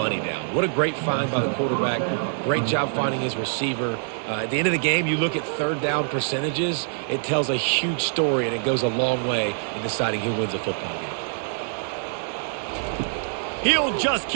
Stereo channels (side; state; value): left; silent; digital silence